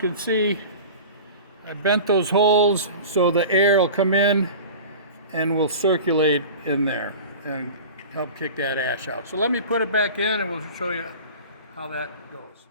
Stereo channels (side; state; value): both; inverted; correlation -0.36